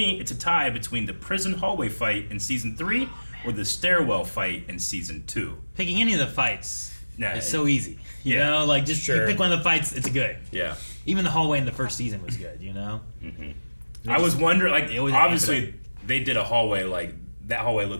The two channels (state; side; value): inverted; both; correlation -1.00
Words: it's a tie between the prison hallway fight in season 3 or the stairwell fight in season 2. Picking any of the fights is so easy. You Yeah. know, like just you Sure. pick one of the fights, it's good. Yeah. Even the hallway in the first season was good, you know? Mm-hmm. I was wondering, like, They always obviously they did a hallway, like, that hallway